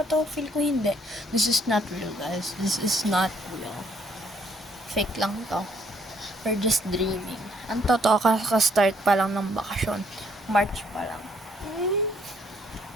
to? Feel ko hindi. This is not real, guys. This is not real. Fake lang to. We're just dreaming. Ang totoo, kaka-start pa lang ng bakasyon. March pa lang.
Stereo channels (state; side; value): normal; both; correlation 0.67